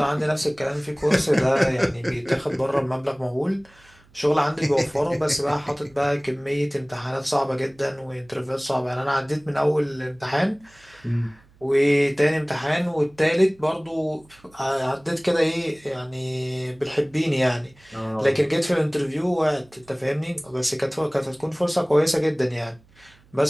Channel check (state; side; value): noise; right; hum, 29 dB below the sound